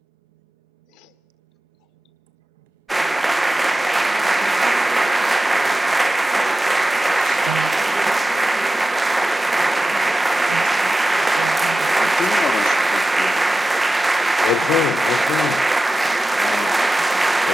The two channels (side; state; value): both; normal; correlation 0.93